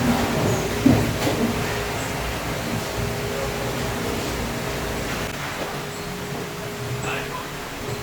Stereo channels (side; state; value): both; identical; correlation 1.00